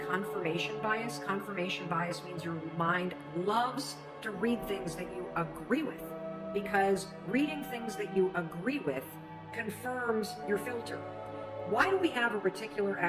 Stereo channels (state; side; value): identical; both; correlation 1.00